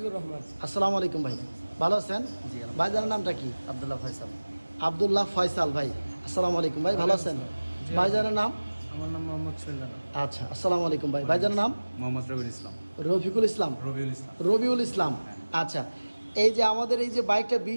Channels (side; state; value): both; inverted; correlation -1.00